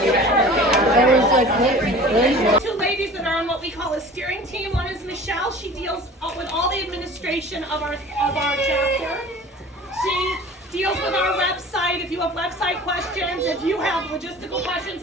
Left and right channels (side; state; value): both; normal; correlation 0.42